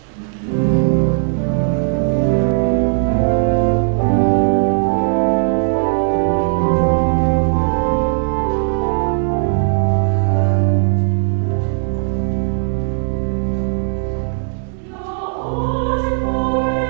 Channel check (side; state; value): left; silent; 68 dB below the other